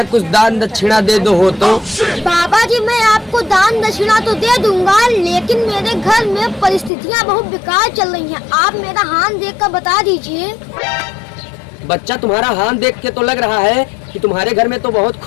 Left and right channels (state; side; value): drops out; right; at 6.9 s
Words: कुछ दान दक्षिणा दे दो हो तो। बाबा जी मैं आपको दान दक्षिणा तो दे दूंगा, लेकिन मेरे घर में परिस्थितियाँ बहुत बेकार चल रही हैं। आप मेरा हाथ देखकर बता दीजिए। बच्चा तुम्हारा हाथ देख के तो लग रहा है कि तुम्हारे घर में तो बहुत